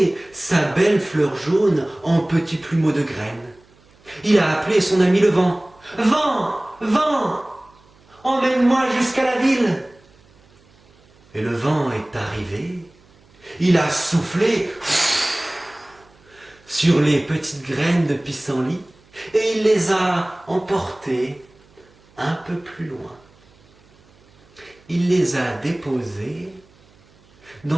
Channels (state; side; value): noise; right; hum, 30 dB below the sound